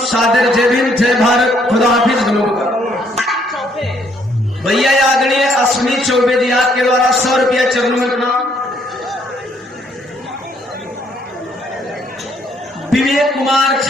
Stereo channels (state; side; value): normal; both; correlation 0.68